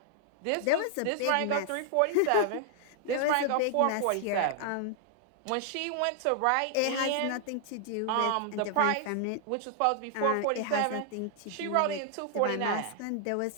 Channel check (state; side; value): different; both; correlation -0.01